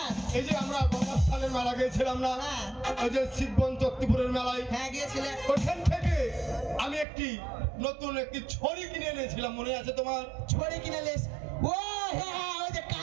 এই যে আমরা গঙ্গাস্থানের মেলা গিয়েছিলাম না, হ্যাঁ। ওই যে শিববন চত্তিপুরের মেলায়, হ্যাঁ গিয়েছিলে। ওখান থেকে আমি একটি নতুন একটি ছড়ি কিনে এনেছিলাম, মনে আছে তোমার? ছড়ি কিনে লেস। ও হ্যাঁ হ্যাঁ, ওই যে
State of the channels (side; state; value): left; drops out; at 7.1 s